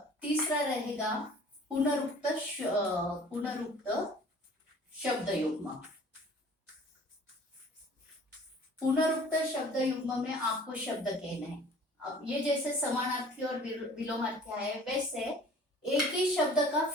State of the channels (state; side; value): normal; both; correlation 0.49